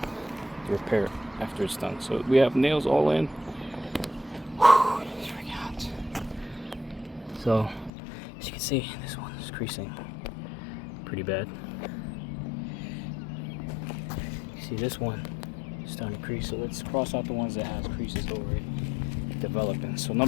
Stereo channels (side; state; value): right; drops out; at 7.9 s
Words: the repair after it's done. So we have nails all in. Whew, it's freaking hot. So as you can see, this one is creasing pretty bad. You see this one is starting to crease, so let's cross out the ones that has creases already developing. So